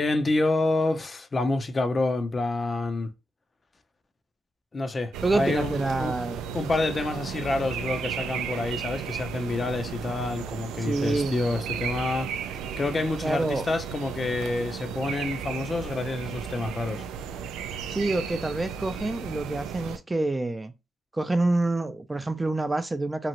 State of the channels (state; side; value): normal; both; correlation 0.85